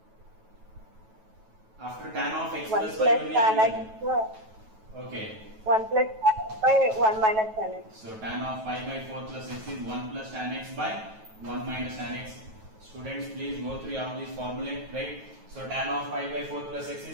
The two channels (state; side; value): late; left; 9.2 ms